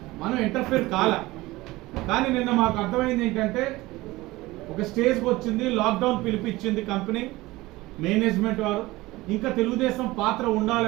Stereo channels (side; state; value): left; quieter; 19.6 dB